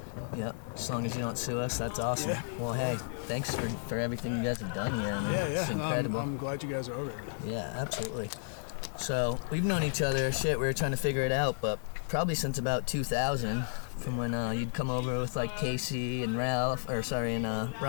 Yep, as long as you don't sue us, that's awesome. Yeah. Well, hey, thanks for everything you guys have done here. Man. Yeah. It's incredible. I'm glad you guys are over here. Yeah, absolutely. So, we've known each other, we were trying to figure it out, but probably since about 2000, from when you'd come over with like Casey and Ryan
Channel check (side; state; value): right; silent; digital silence